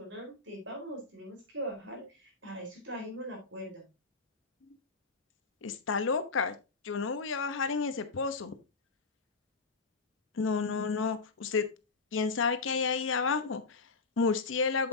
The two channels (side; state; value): right; quieter; 4.3 dB